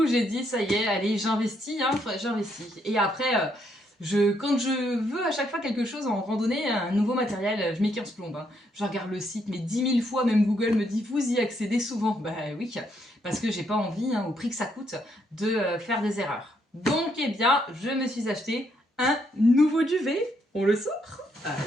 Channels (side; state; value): both; normal; correlation 0.74